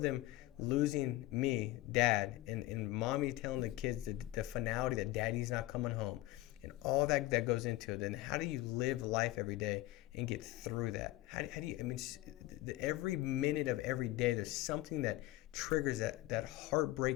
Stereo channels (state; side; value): quieter; right; 17.2 dB